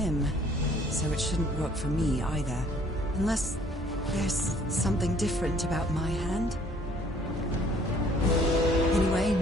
so it shouldn't work for me either. Unless there's something different about my hand. Anyway,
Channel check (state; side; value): normal; both; correlation 0.58